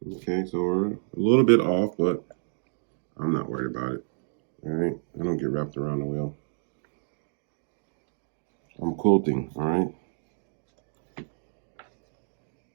Okay, so we're a little bit off, but I'm not worried about it. All right, I don't get wrapped around the wheel. I'm quilting, all right?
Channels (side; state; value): left; silent; digital silence